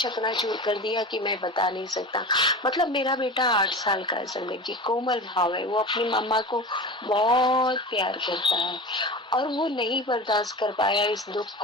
कर दिया कि मैं बता नहीं सकता। मतलब मेरा बेटा 8 साल का है संगत जी, कोमल भाव है, वो अपनी मम्मा को बहुत प्यार करता है और वो नहीं बर्दाश्त कर पाया इस दुख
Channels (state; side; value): normal; both; correlation 0.31